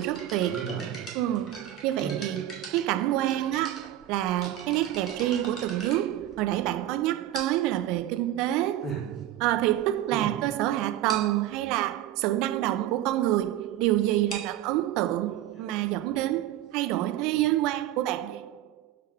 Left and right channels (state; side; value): quieter; left; 13.0 dB